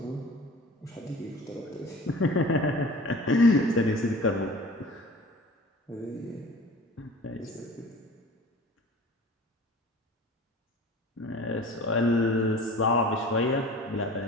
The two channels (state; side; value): normal; both; correlation 0.41